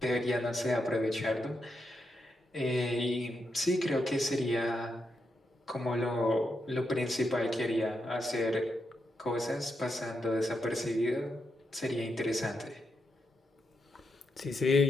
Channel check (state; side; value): normal; both; correlation 0.83